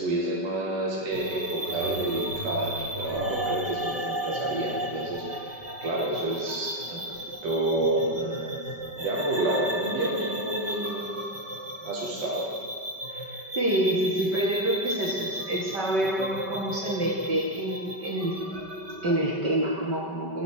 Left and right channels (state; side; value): late; left; 5.2 ms